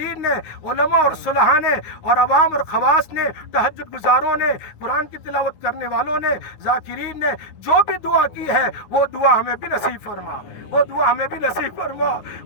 نے, علماء اور صلحاء نے, اور عوام اور خواص نے, تہجد گزاروں نے, قرآن کی تلاوت کرنے والوں نے, ذاکرین نے جو بھی دعا کی ہے, وہ دعا ہمیں بھی نصیب فرما, وہ دعا ہمیں بھی نصیب فرما,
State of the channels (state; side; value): late; right; 9.6 ms